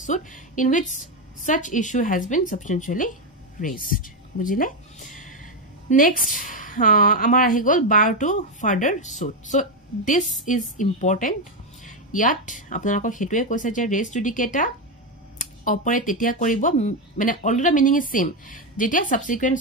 suit in which such issue has been substantially raised বুজিলে next amar ahi gol bar to further suit so this is important yat apnalako hetuye koise je res judicata operate tetia koribo mane already meaning is same jetia subsequent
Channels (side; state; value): both; normal; correlation 0.07